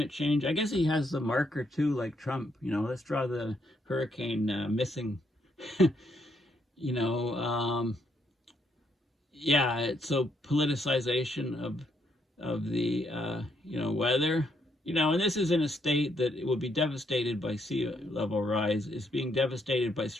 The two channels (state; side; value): normal; both; correlation 0.74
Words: change. I guess he has the marker too, like Trump. Let's draw the hurricane missing. So politicization of the weather, and this is in a state that it will be devastated by sea level rise. It's being devastated by